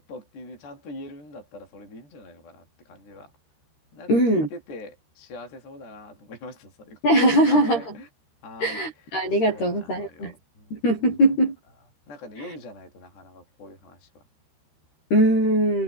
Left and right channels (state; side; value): late; right; 13 ms